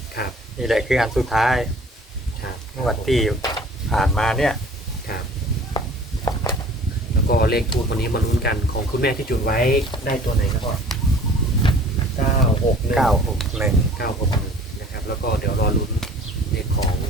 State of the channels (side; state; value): both; normal; correlation 0.49